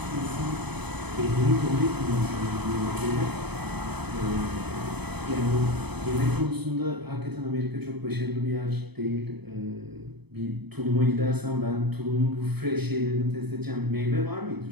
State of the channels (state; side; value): late; left; 0.98 ms